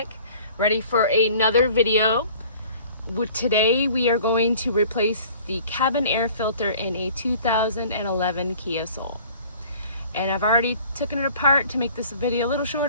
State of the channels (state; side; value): inverted; both; correlation -0.49